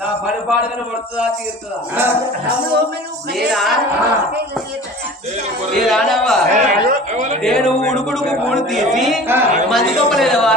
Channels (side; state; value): both; normal; correlation 0.41